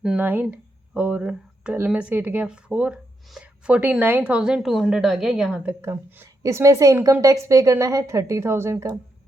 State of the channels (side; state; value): both; normal; correlation 0.81